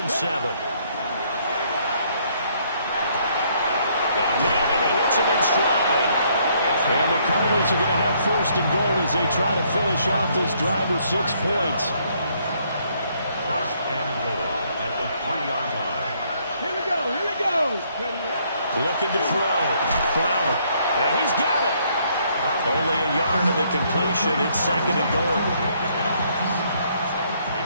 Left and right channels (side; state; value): both; inverted; correlation -0.68